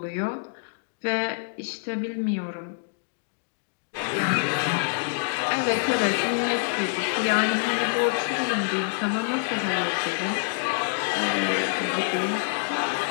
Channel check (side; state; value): right; silent; digital silence